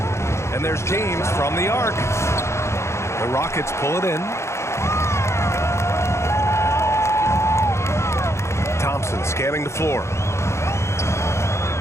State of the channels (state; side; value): late; right; 0.13 ms